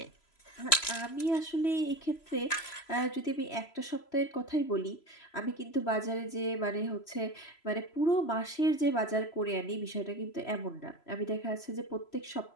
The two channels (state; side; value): late; right; 3.0 ms